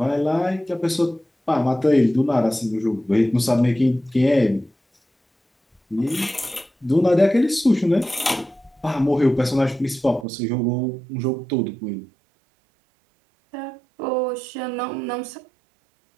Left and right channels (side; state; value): left; drops out; at 10.2 s